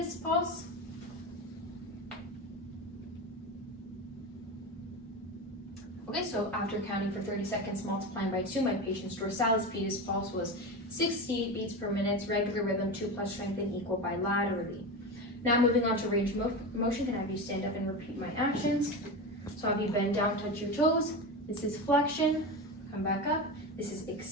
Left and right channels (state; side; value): normal; both; correlation 0.23